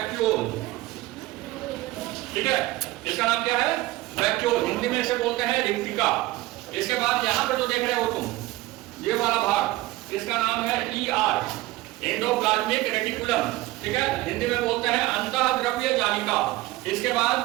ठीक है। इसका नाम क्या है? वैक्यूल, हिंदी में इसे बोलते हैं रिक्तिका। इसके बाद यहां पर जो देख रहे हो तुम ये वाला भाग इसका नाम है ER, एंडोप्लाज्मिक रेटिकुलम, ठीक है। हिंदी में बोलते हैं अंतःद्रव्य जालिका। इसके बाद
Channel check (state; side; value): quieter; left; 18.2 dB